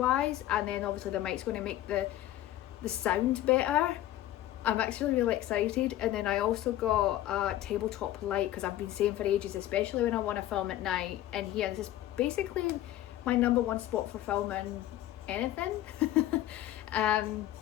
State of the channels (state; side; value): quieter; right; 13.9 dB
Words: And then obviously the mic's going to make the sound better. I'm actually really excited. And then I also got a tabletop light, because I've been saying for ages, especially when I want to film at night in here, this is basically my number one spot for filming anything.